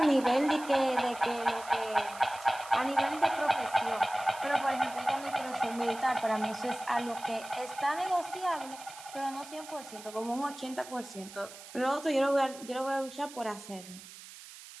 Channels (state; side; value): noise; right; hiss, 16 dB below the sound